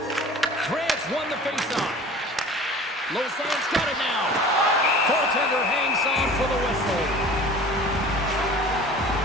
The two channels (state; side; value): normal; both; correlation 0.42